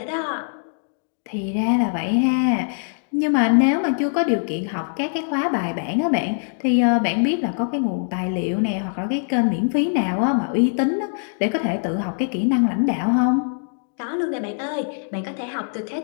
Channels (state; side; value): silent; right; digital silence